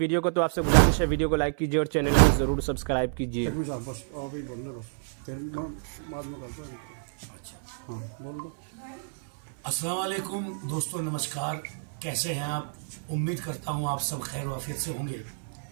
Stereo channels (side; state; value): left; silent; 59 dB below the other